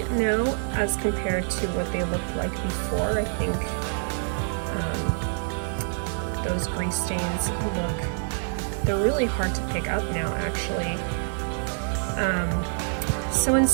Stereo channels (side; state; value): left; silent; digital silence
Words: now as compared to what they looked like before. I think those grease stains they're really hard to pick up now actually. So in